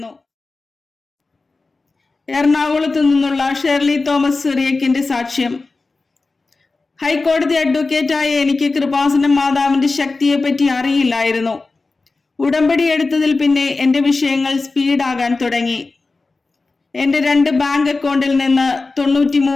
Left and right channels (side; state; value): right; quieter; 3.7 dB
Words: എറണാകുളത്ത് നിന്നുള്ള ഷെർലി തോമസ് സിറിയക്കിന്റെ സാക്ഷ്യം. ഹൈക്കോടതി അഡ്വക്കേറ്റായ എനിക്ക് കൃപാസനം മാതാവിന്റെ ശക്തിയെപ്പറ്റി അറിയില്ലായിരുന്നു. ഉടമ്പടി എടുത്തതിൽ പിന്നെ എന്റെ വിഷയങ്ങൾ സ്പീഡാകാൻ തുടങ്ങി. എന്റെ 2 ബാങ്ക് അക്കൗണ്ടിൽ നിന്ന്